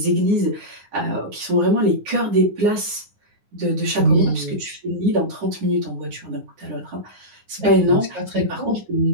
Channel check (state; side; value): late; left; 9.8 ms